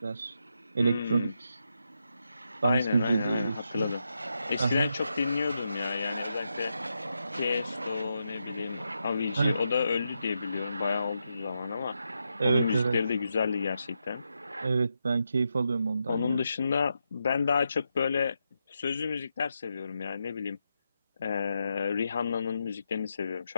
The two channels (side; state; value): both; inverted; correlation -0.85